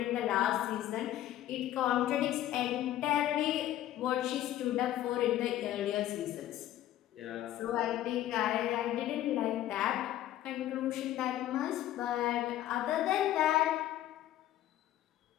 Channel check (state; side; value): quieter; right; 13.1 dB